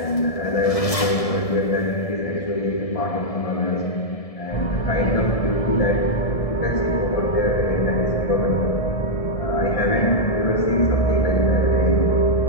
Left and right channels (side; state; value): right; late; 1.7 ms